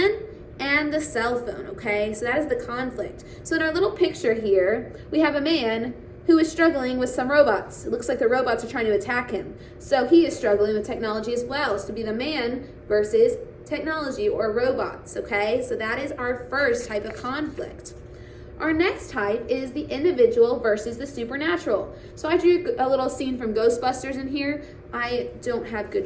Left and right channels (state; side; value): identical; both; correlation 1.00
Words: and the cell phone, okay? So that is the conflict. So in our little picture here, we have a man who is struggling with some robots. It looks like the robots are trying to attack him. So he is struggling with technology as well. So be the man versus technology or robots, okay? So that is our first type of conflict. Our next type is the individual versus the supernatural. So I drew a little scene from Ghostbusters in here. I don't have good